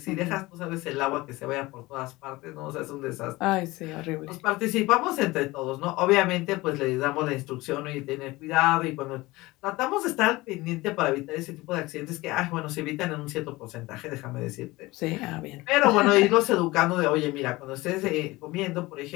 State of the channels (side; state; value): right; quieter; 20.5 dB